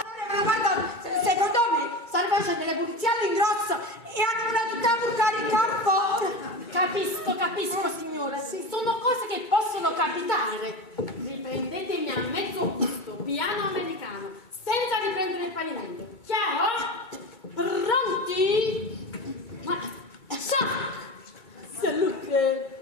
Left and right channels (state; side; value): late; right; 2.2 ms